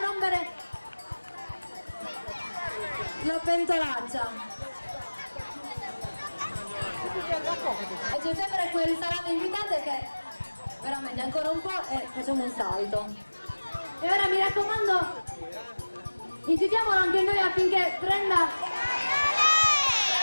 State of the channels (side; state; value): both; inverted; correlation -1.00